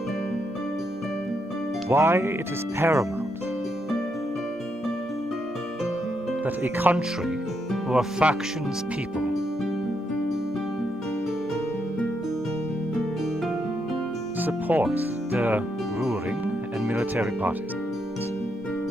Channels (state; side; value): normal; both; correlation 0.79